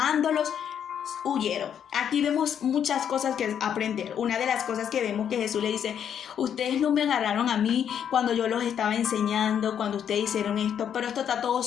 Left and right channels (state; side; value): quieter; right; 8.7 dB